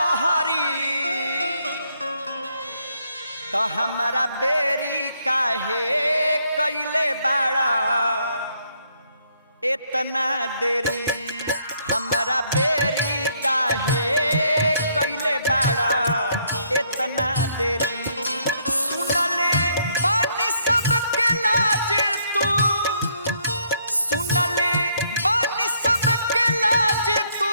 तो हमारा बेरी काहे कैले बाड़ा इतना देरी, हमारा बेरी काहे कैले बाड़ा इतना देरी। सुनले बानी सबके लाज तू, सुनले बानी सबके लाज तू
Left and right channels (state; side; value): inverted; both; correlation -0.70